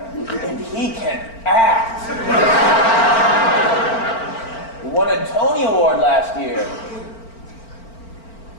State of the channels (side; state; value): right; late; 4.4 ms